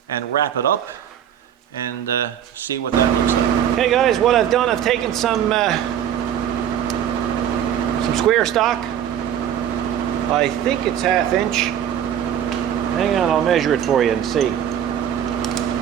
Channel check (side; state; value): left; quieter; 9.8 dB